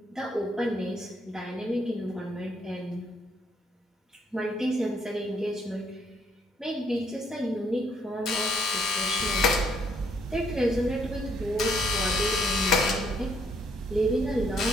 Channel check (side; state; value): both; normal; correlation 0.70